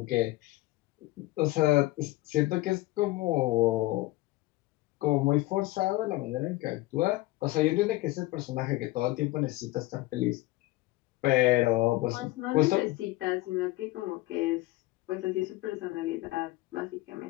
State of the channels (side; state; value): right; quieter; 18.9 dB